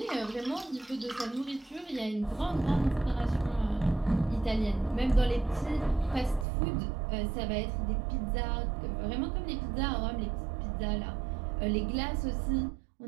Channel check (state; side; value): drops out; left; at 6.5 s